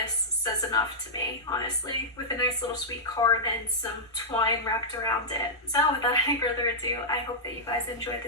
says enough to me, honestly, with a nice little sweet card and some twine wrapped around it. So without any further ado, I hope that you guys enjoyed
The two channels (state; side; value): normal; both; correlation -0.10